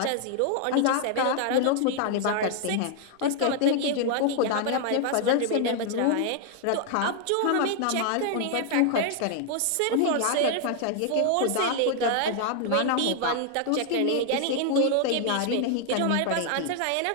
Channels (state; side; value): different; both; correlation 0.00